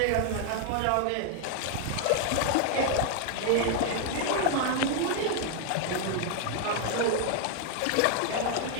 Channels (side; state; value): both; different; correlation 0.00